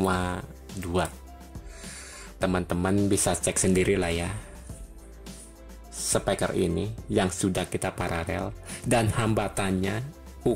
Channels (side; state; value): both; identical; correlation 1.00